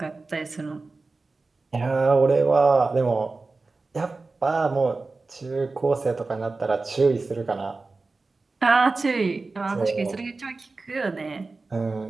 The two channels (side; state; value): left; quieter; 3.7 dB